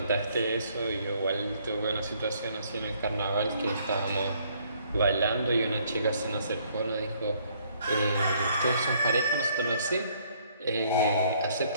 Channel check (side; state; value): both; inverted; correlation -0.65